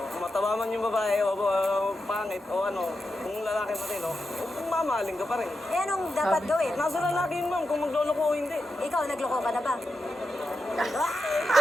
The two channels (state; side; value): normal; both; correlation 0.88